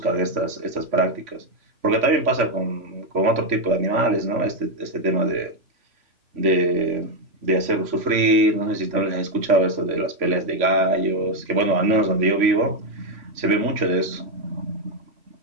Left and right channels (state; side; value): late; left; 3.4 ms